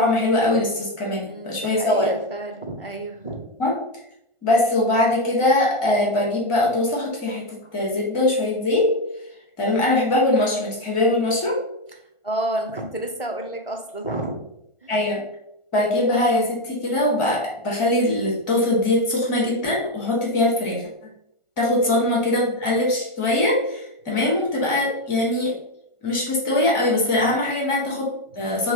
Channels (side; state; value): right; late; 1.4 ms